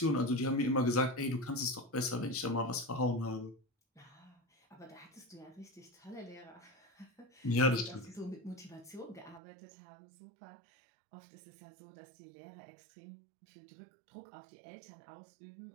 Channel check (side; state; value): left; drops out; at 9.4 s